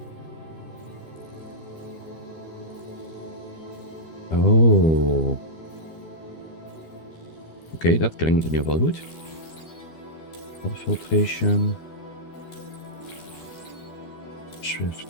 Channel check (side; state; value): right; late; 12 ms